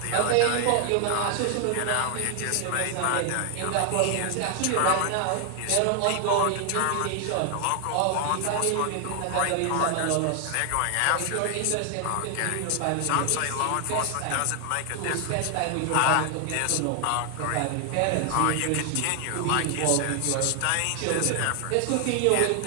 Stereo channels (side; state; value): both; different; correlation 0.00